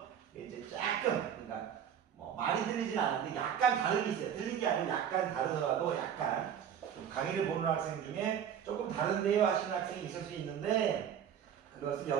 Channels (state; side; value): quieter; left; 8.8 dB